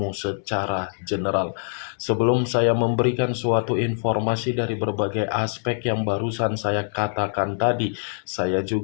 secara general. Sebelum saya memberikan suatu informasi dari berbagai aspek yang barusan saya katakan tadi, saya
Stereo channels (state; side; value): silent; right; 63 dB below the other